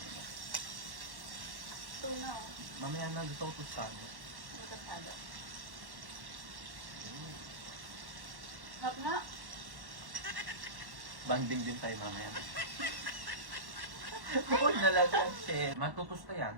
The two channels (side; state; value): left; late; 1.1 ms